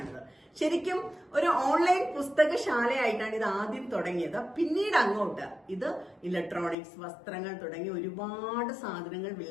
ശരിക്കും ഒരു ഓൺലൈൻ പുസ്തകശാലയായിട്ടാണ് ഇത് ആദ്യം തുടങ്ങിയത്. പിന്നീട് അങ്ങോട്ട് ഇത് ഇലക്ട്രോണിക്സ്, വസ്ത്രങ്ങൾ തുടങ്ങി ഒരുപാട് സാധനങ്ങൾ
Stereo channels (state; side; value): drops out; right; at 6.8 s